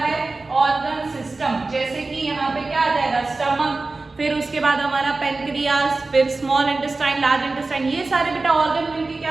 है, ऑर्गन सिस्टम। जैसे कि यहाँ पे क्या आ जाएगा, स्टमक, फिर उसके बाद हमारा पेनक्रियास, फिर स्मॉल इंटेस्टाइन, लार्ज इंटेस्टाइन, ये सारे बेटा ऑर्गन मिलके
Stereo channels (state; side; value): quieter; left; 3.5 dB